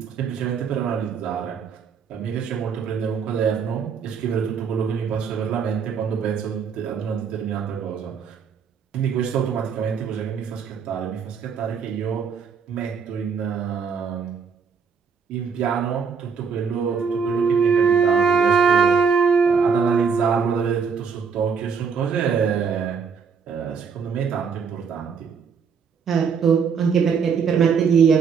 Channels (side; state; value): left; quieter; 6.1 dB